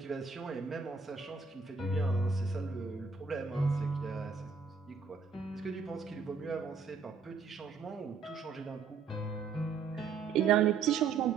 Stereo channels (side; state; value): left; quieter; 5.4 dB